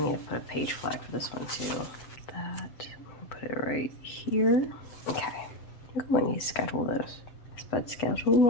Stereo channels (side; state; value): right; late; 7.8 ms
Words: to put a page flag for this one too. That, put it right here. Okay, I'm going to schedule this. But schedule